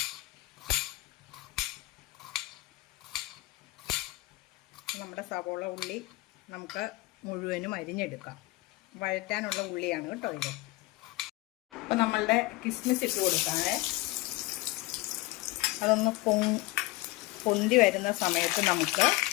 നമ്മുടെ സവോള ഉള്ളി നമുക്ക് മുഴുവനും അരിഞ്ഞെടുക്കാം. വഴറ്റാനുള്ള ഉള്ളിയാണ് കേട്ടോ ഇത്. അപ്പം നമ്മളുടെ കിസ്മിസ് ഇട്ട് കൊടുക്കാതെ അതൊന്ന് പൊന്തി വരുന്ന സമയത്ത് നമുക്ക്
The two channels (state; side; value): quieter; right; 20.3 dB